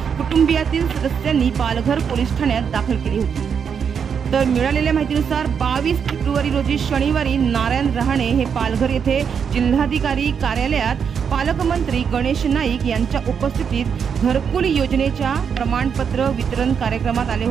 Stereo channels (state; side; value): quieter; left; 7.0 dB